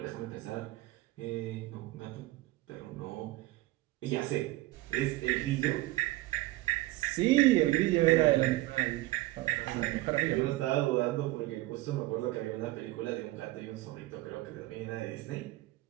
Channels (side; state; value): left; quieter; 17.7 dB